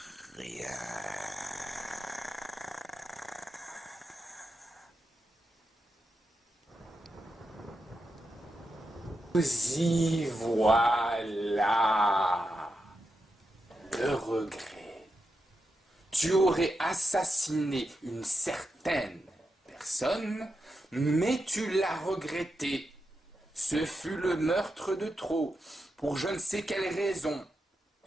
rien. Y voilà le regret. Tu aurais assassiné une certaine personne, mais tu l'as regretté. Ce fut le meurtre de trop, pour je ne sais quelle raison.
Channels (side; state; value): both; normal; correlation 0.87